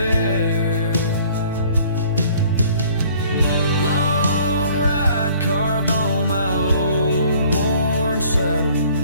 Long ride carved on my old worn saddle,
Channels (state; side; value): inverted; both; correlation -0.55